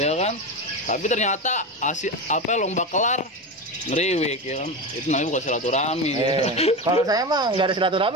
kan? Tapi ternyata lomba kelar ngeriwik, ya kan? Itu namanya bukan silaturahmi. Kalau saya mah nggak ada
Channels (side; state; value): both; normal; correlation 0.21